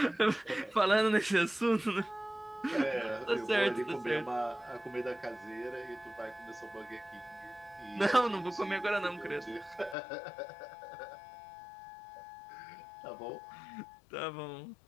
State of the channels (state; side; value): drops out; right; at 10.0 s